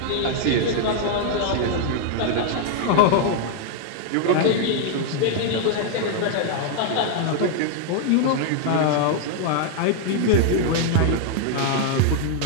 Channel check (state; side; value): different; both; correlation 0.00